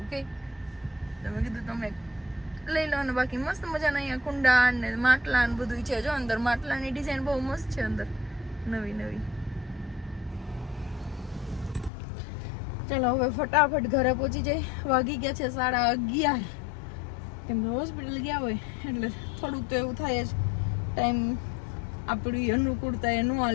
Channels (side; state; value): right; drops out; at 11.9 s